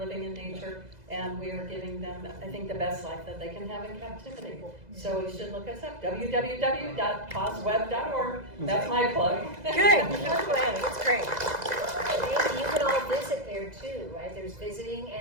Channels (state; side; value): late; left; 2.0 ms